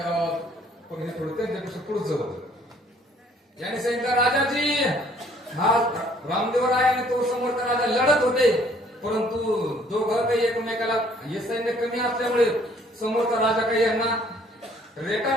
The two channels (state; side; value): normal; both; correlation 0.60